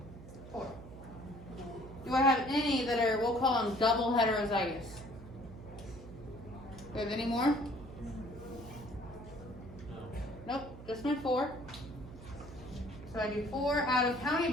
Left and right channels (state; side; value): noise; right; hum, 15 dB below the sound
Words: 4. Do I have any that are, we'll call them double heterozygous? Do I have any more? Nope, just my 4. So I do 4 out of how many